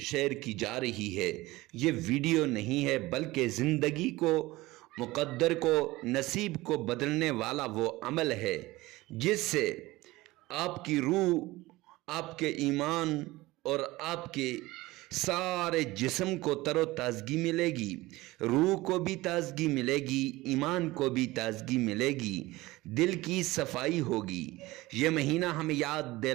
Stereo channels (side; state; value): left; quieter; 19.5 dB